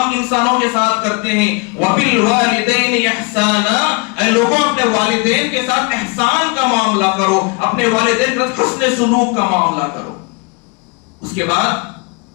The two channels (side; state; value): right; quieter; 30.3 dB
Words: انسانوں کے ساتھ کرتے ہیں۔ وَبِالْوَالِدَيْنِ إِحْسَانًا، اے لوگوں اپنے والدین کے ساتھ احسان کا معاملہ کرو، اپنے والدین کے ساتھ حسن سلوک کا معاملہ کرو۔ اس کے بعد